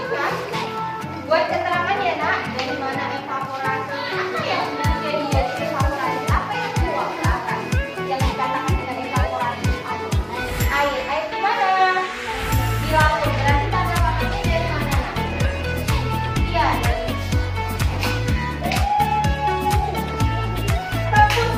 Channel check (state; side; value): identical; both; correlation 1.00